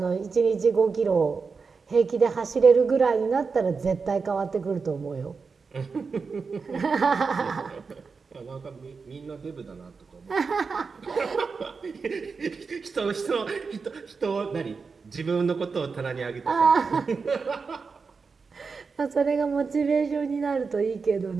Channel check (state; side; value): quieter; left; 4.9 dB